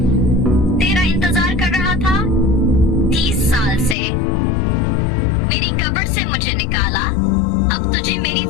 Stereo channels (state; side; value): drops out; right; at 4.0 s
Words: तेरा इंतजार कर रहा था 30 साल से, मेरी कब्र से मुझे निकाला, अब तुझे मेरी